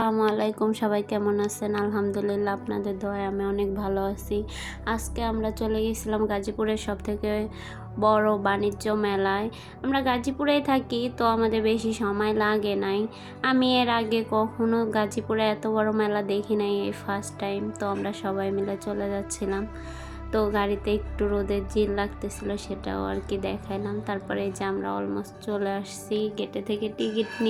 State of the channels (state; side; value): identical; both; correlation 1.00